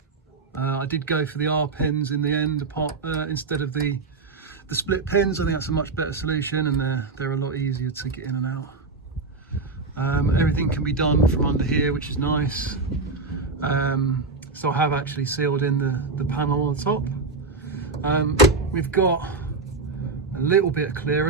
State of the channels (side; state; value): left; quieter; 3.9 dB